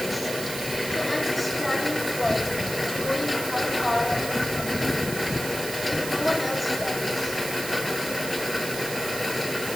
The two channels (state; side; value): noise; right; hiss, 7 dB below the sound